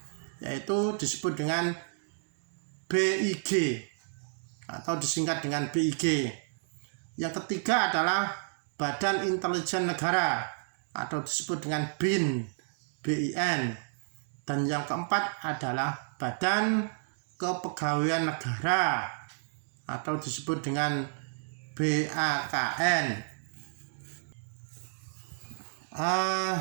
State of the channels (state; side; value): silent; left; digital silence